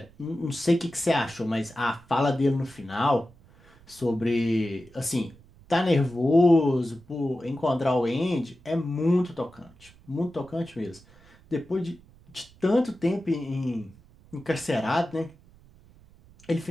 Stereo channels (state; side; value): noise; right; rumble, 26 dB below the sound